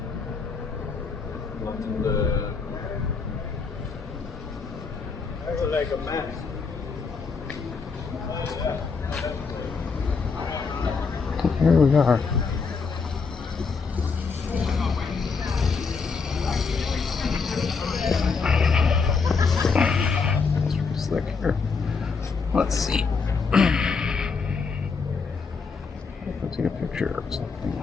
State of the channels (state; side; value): quieter; right; 5.0 dB